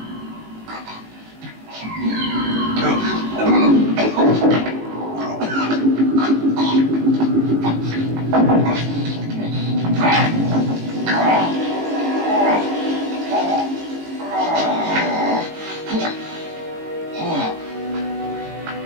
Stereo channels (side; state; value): left; late; 19 ms